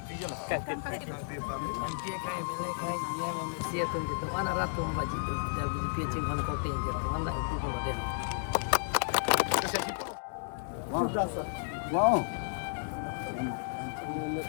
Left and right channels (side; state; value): right; silent; digital silence